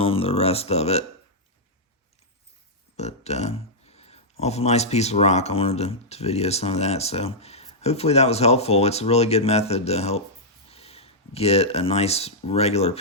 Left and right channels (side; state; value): both; normal; correlation -0.08